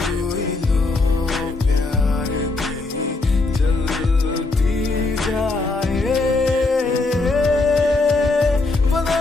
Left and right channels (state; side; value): quieter; right; 3.4 dB